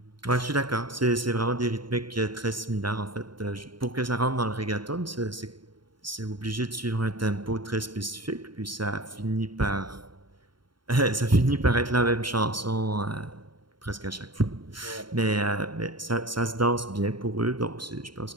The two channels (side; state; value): left; late; 0.72 ms